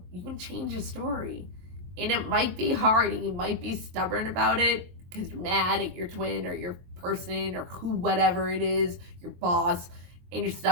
you can change a story. And it might be hard and you might be stubborn about it because you're mad at your twin or your person or whatever it is, your boss, and you're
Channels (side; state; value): left; late; 23 ms